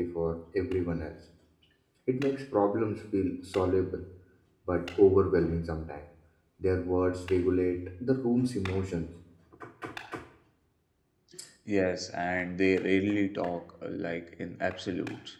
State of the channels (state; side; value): identical; both; correlation 1.00